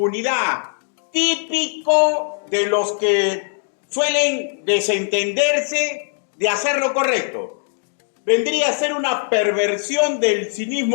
típico de los que suelen desentenderse de hacer lo correcto. Vendría a ser una perversión del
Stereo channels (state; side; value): silent; right; digital silence